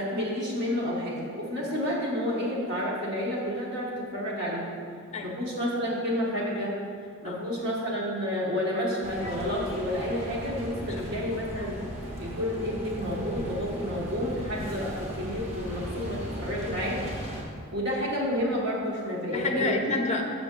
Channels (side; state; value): both; normal; correlation 0.25